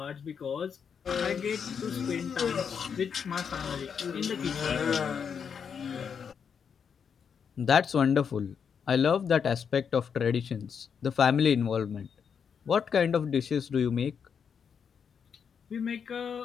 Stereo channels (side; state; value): right; quieter; 6.9 dB